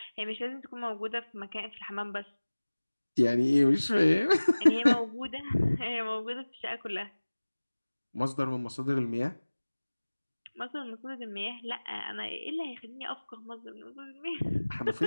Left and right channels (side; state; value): both; inverted; correlation -1.00